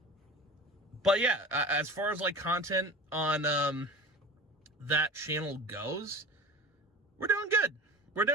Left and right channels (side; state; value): both; normal; correlation 0.35